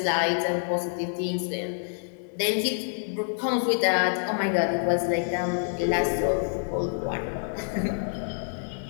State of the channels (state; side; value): silent; right; digital silence